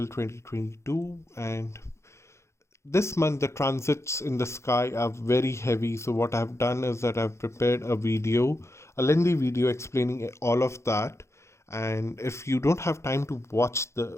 2022. And this month, the transits in the sky are very heavy. So, what I've done is that I've prepared a lengthy video explaining all of that. And if you don't have time to watch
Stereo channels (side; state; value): right; late; 0.13 ms